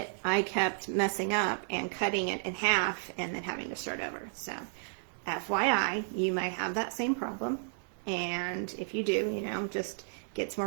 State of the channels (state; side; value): silent; left; 56 dB below the other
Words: I kept messing up and cutting it in half and then having to start over. So FYI, you might have that same problem. And if you do, just get some